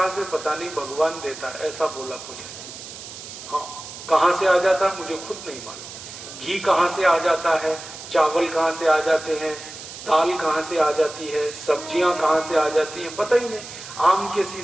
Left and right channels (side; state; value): right; noise; hiss, 13 dB below the sound